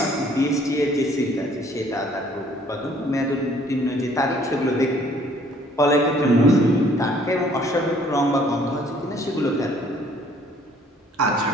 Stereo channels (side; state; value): both; normal; correlation 0.60